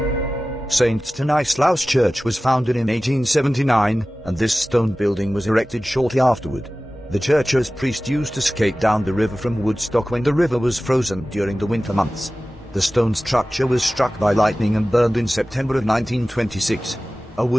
St. Stanislaus Church was founded in 1879, and this stone building was erected shortly afterward. The church's priest used to skate down the river from Woodstock when the river was frozen during the winter months. The stone structure was struck by lightning and burned in September of 1926. A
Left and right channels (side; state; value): both; normal; correlation 0.96